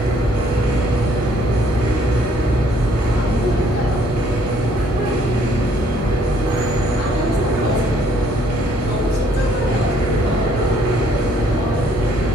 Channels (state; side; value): normal; both; correlation 0.64